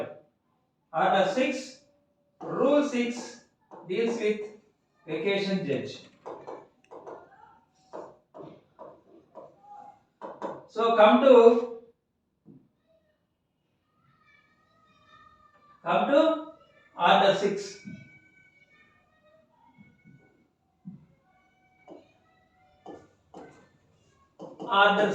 Order 6, Rule 6 deals with vacation judge. So come to Order 6. Order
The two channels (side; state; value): both; identical; correlation 1.00